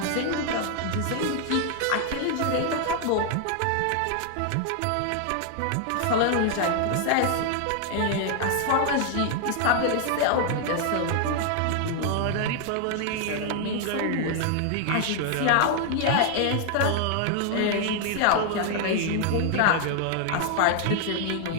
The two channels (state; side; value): different; both; correlation 0.00